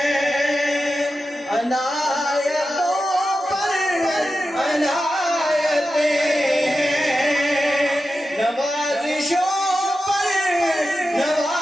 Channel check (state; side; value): normal; both; correlation 0.91